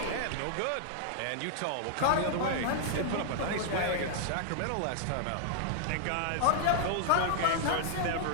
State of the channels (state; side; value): different; both; correlation -0.01